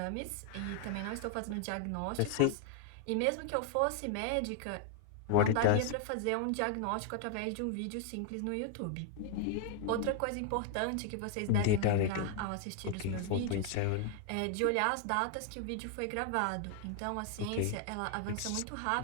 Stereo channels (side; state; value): both; different; correlation 0.00